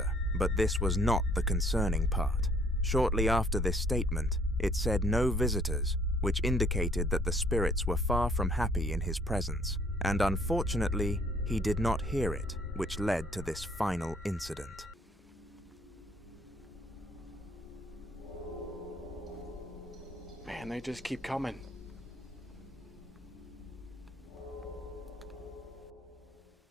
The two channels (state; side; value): normal; both; correlation 0.62